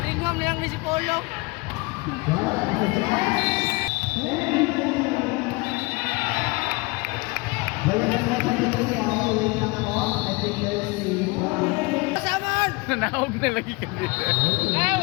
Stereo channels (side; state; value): right; quieter; 25.8 dB